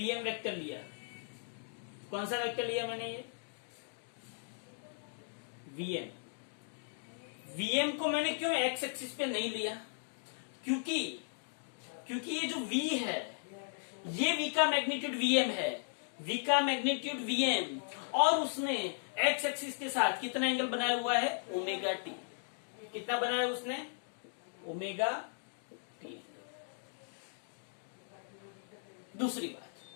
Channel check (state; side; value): silent; right; digital silence